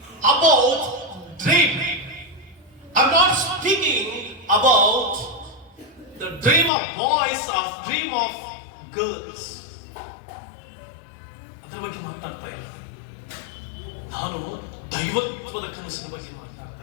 about dream. I am not speaking about the dream of boys, of dream of girls. ಅದರ ಬಗ್ಗೆ ಮಾತಾಡ್ತಾ ಇಲ್ಲ. ನಾನು ದೈವತ್ವದ ಕನಸಿನ ಬಗ್ಗೆ ಮಾತಾಡ್ತಾ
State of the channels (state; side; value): drops out; right; at 6.7 s